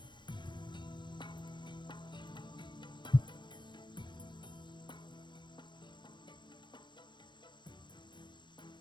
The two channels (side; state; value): right; late; 0.22 ms